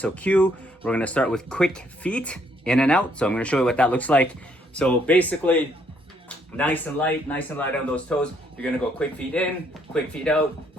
Q, we're gonna start with quick feet, in and out. So I'm gonna show you what that looks like. So basically, nice and light on those toes. You're gonna go quick feet in, quick feet out,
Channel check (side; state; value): both; normal; correlation 0.69